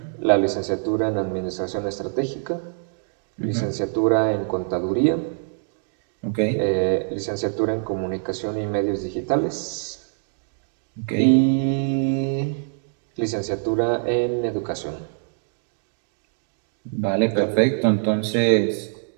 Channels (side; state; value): left; silent; digital silence